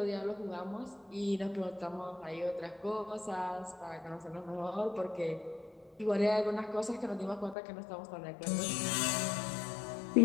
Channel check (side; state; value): right; drops out; at 7.6 s